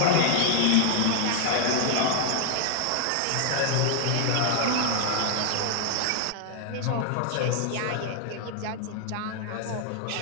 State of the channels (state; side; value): different; both; correlation 0.00